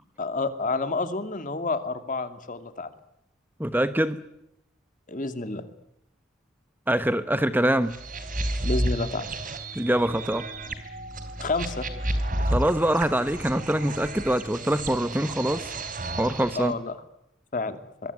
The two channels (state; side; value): normal; both; correlation 0.71